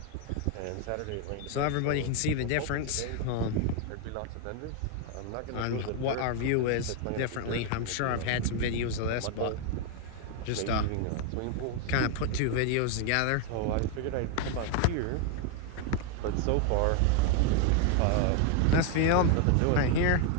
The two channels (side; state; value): both; different; correlation 0.00